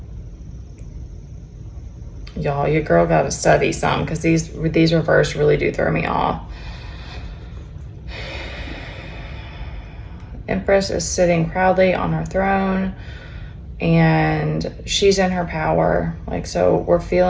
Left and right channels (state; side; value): identical; both; correlation 1.00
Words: Y'all, your girl got to study some because these reverse really do throw me off. Empress is sitting proudly on her throne and she's in her power. Like, so